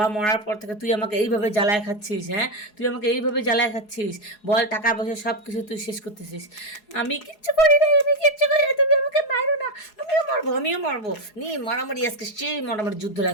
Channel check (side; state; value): right; late; 4.8 ms